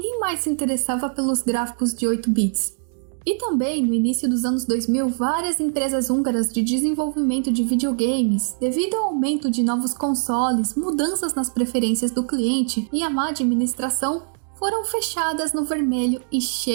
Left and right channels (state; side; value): silent; left; digital silence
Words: mais se interessava pelos gráficos de 8 bits. E também, no início dos anos 2000, várias empresas húngaras de desenvolvimento de videogames, devido ao aumento de novos consoles, mudanças nas preferências do cliente e a má administração, foram fechadas no vermelho e